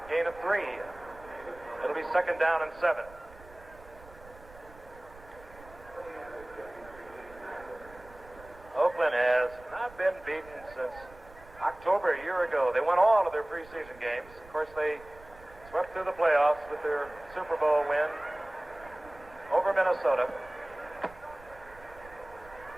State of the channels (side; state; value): right; noise; rumble, 21 dB below the sound